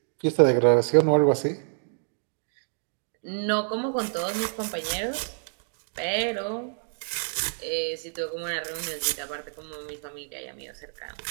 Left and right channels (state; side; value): silent; left; digital silence